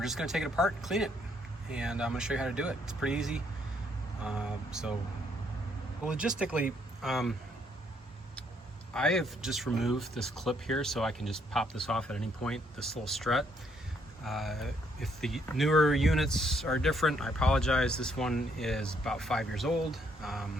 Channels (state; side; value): normal; both; correlation 0.70